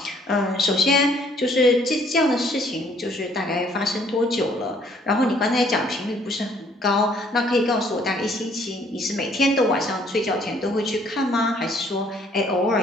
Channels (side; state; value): both; normal; correlation 0.62